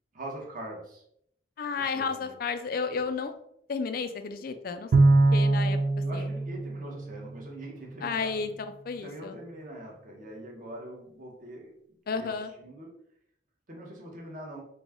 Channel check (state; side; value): normal; both; correlation 0.72